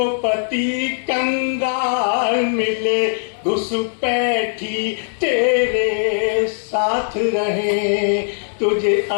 पति कंगाल मिले, घुसपैठी तेरे साथ रहे, तुझे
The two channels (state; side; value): silent; right; digital silence